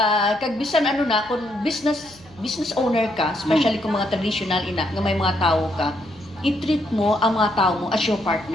Kag bisan ano na, kung business owner ka, especially kung mga traditional ina, nga may mga tao ka, i-treat mo ang mga tao mo as your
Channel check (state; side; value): noise; right; hum, 25 dB below the sound